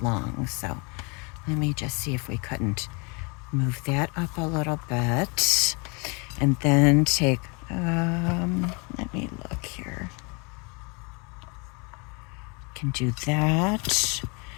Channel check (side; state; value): right; quieter; 31.7 dB